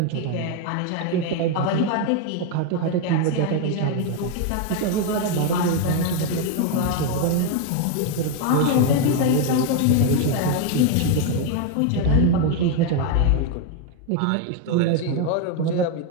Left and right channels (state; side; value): different; both; correlation 0.01